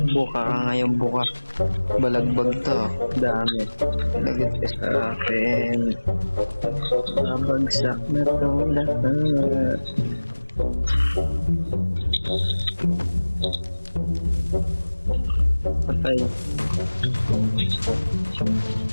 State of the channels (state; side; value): inverted; both; correlation -1.00